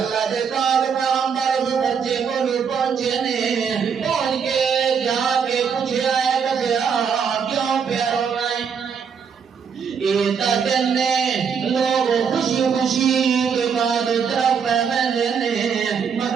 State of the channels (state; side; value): quieter; left; 6.6 dB